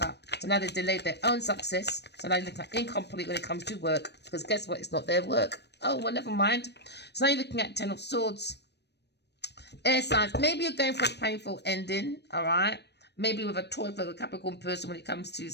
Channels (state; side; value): late; right; 0.49 ms